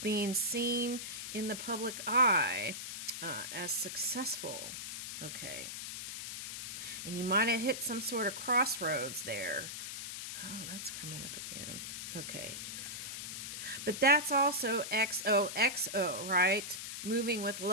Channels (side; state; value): left; noise; hiss, 6 dB below the sound